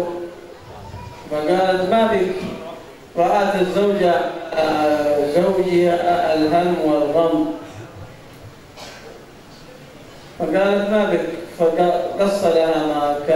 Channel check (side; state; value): both; identical; correlation 1.00